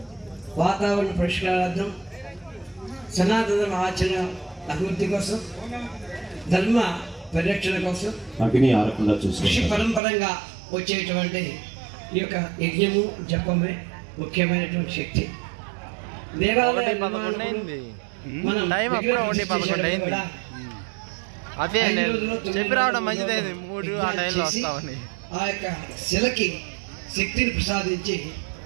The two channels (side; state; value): left; drops out; at 10.0 s